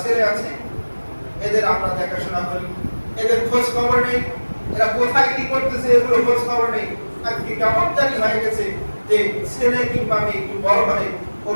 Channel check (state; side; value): inverted; both; correlation -1.00